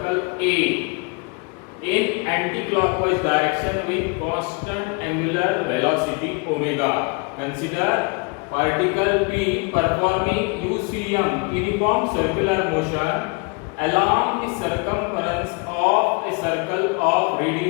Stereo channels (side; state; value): right; quieter; 31.7 dB